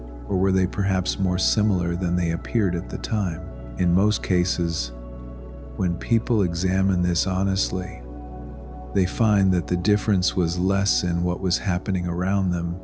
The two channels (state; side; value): identical; both; correlation 1.00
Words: or were they perhaps more similar than they appeared at the time? In most cases, when people examine this honestly, they find that the difference was less in what was happening around them